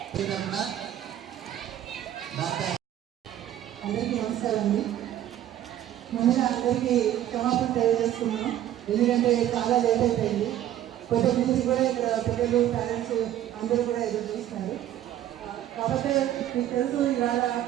అందరికీ నమస్కారం అండి. ముందుగా అందరికీ క్షమాపణ తెలియజేస్తున్నాం, ఎందుకంటే చాలా లేట్ అయిపోయింది. కొత్త నుంచి కూడా ఇక్కడ పిల్లలు పేరెంట్స్ అందరూ కూడా ఎదురు చూస్తున్నారు. కాబట్టి మీకు తెలుసు, ఇవాళ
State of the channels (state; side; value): quieter; left; 12.0 dB